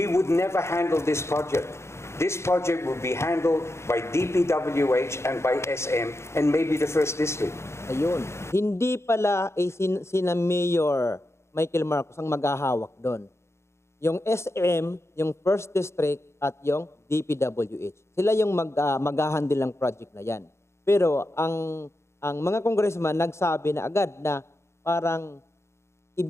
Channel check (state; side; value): late; right; 0.13 ms